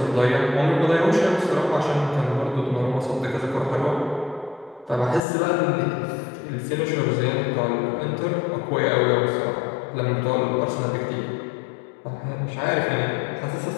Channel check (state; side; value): drops out; right; at 5.2 s